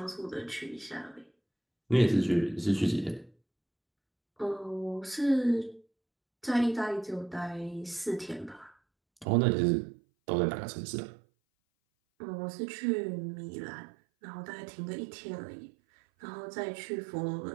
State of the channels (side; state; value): left; drops out; at 9.2 s